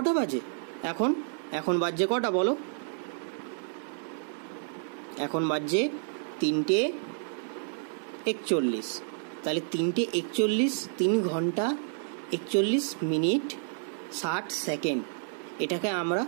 বাজে এখন বাজছে কটা বলো? এখন বাজছে 3:41। তাহলে 3:41, 3 ঘন্টা 41 মিনিট 60 সেকেন্ড। এটাকে আমরা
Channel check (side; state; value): left; silent; 58 dB below the other